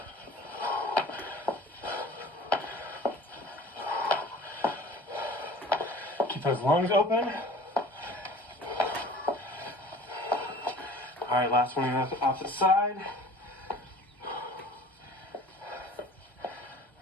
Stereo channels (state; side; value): normal; both; correlation 0.44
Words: Keep those lungs open. All right, last one on the opposite side.